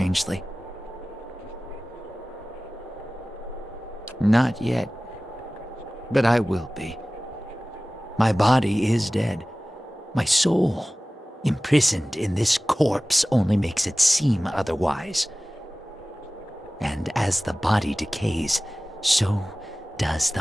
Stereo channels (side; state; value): both; normal; correlation 0.97